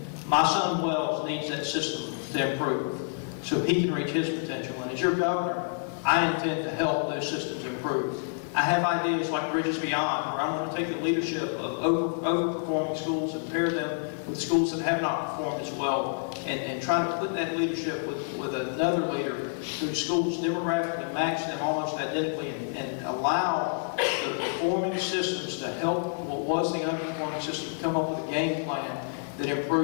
My son Wells needs that system to improve so he can reach his potential. And as your governor, I intend to help those systems improve. I have ideas like Bridges Beyond, where I'm going to take the leadership of overperforming schools and pair them with schools that have not performed as well, and try to put that leadership with another leader whose schools demographically match them almost identically, and allow the performing systems to help what was the underperforming system come up with a game plan that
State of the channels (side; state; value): right; silent; digital silence